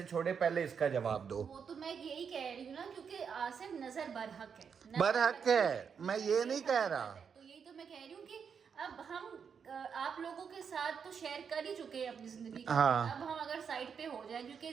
छोड़े, पहले इसका जवाब दो। वो तो मैं यही कह रही हूँ ना, क्योंकि आसिफ नजर बरहक है, बरहक है, मैं ये नहीं कह रहा। तो यही तो मैं कह रही हूँ कि अब हम आप लोगों के साथ तो शेयर कर ही चुके हैं अपनी जिंदगी का। हाँ। अब हम अगर साइड पे हो जाए, क्योंकि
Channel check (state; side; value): quieter; left; 6.7 dB